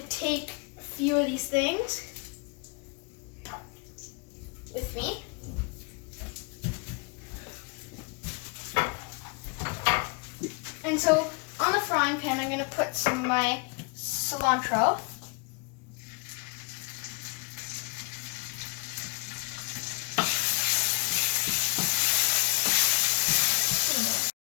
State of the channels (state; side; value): quieter; right; 31.9 dB